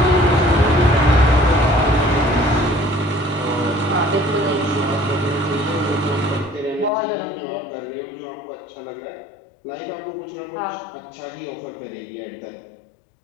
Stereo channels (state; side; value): drops out; right; at 6.9 s